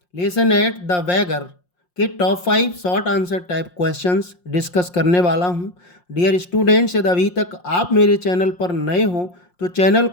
lesson at the beggar के top 5 short answer type questions discuss करने वाला हूं। डियर स्टूडेंट्स, यदि अभी तक आप मेरे चैनल पर नए हो तो चैनल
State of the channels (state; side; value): late; right; 5.6 ms